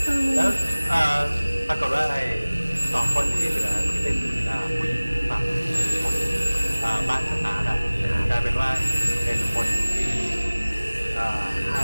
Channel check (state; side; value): inverted; both; correlation -1.00